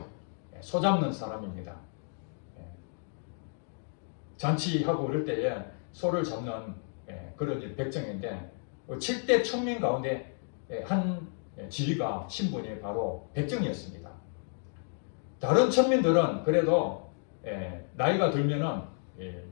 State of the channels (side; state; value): right; silent; 57 dB below the other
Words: 소 잡는 사람입니다. 잔치하고 그럴 때에 소를 잡는 그런 백정인데 7대 천민 가운데 한 지위가 신분이 바로 백정이었습니다. 다른 천민들은 그래도 나이가 들면은